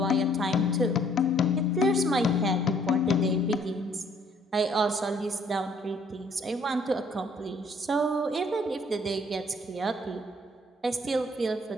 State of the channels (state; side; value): normal; both; correlation 0.62